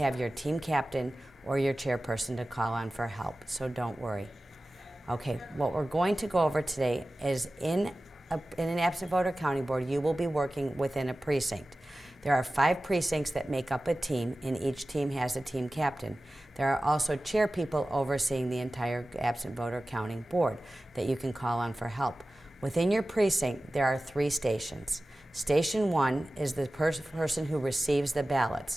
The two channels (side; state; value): both; normal; correlation 0.96